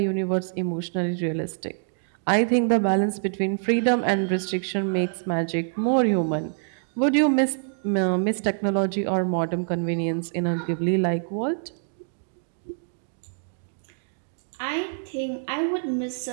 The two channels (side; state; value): left; silent; digital silence